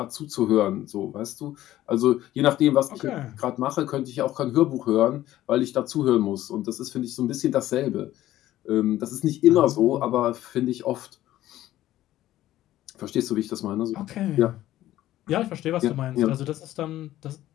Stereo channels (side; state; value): right; quieter; 14.3 dB